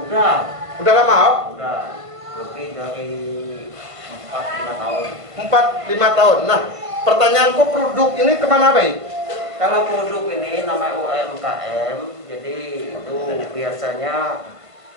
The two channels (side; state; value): left; late; 1.5 ms